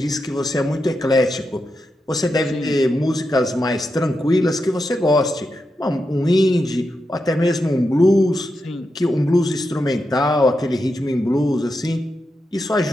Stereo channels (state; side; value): normal; both; correlation 0.87